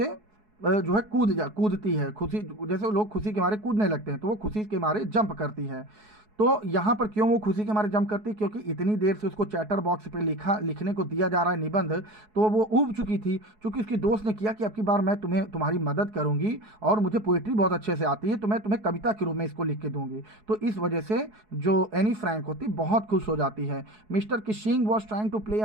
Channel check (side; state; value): left; late; 4.7 ms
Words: जो है कूदती है, खुशी, जैसे लोग खुशी के मारे कूदने लगते हैं तो वो खुशी के मारे जंप करती है। तो यहाँ पर क्यों वो खुशी के मारे जंप करती है, क्योंकि इतनी देर से उसको चैटर बॉक्स पे लिखने को दिया जा रहा है निबंध, तो वो ऊब चुकी थी। क्योंकि उसकी दोस्त ने किया कि अब की बार मैं तुम्हारी मदद करूंगी और मुझे पोइट्री बहुत अच्छे से आती है तो मैं तुम्हें कविता के रूप में इसको लिख के दूंगी। तो इस वजह से जो एनी फ्रैंक होती बहुत खुश हो जाती है। Mister Keesing was trying to play